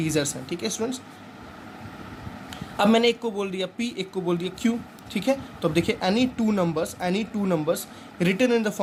हैं, ठीक है स्टूडेंट्स। अब मैंने एक को बोल दिया p, एक को बोल दिया q, ठीक है। तो अब देखिए, any two numbers written in the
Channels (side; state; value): both; identical; correlation 1.00